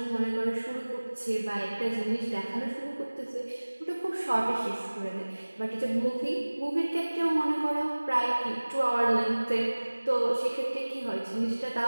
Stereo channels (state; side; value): inverted; both; correlation -1.00